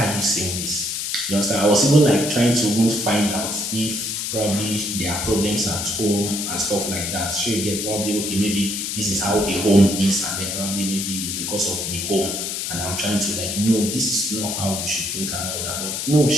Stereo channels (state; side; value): noise; left; hiss, 3 dB below the sound